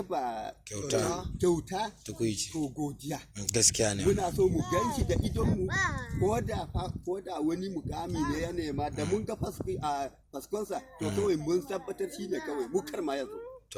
kyauta to godiya. Gaskiya ne. Muna so mu gan shi da idonmu, ko da wani mukami ne ya nema, da mun ga faskonsa to kawai mun tabbatar shi ne kawai mu kar ma yazo.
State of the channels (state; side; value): identical; both; correlation 1.00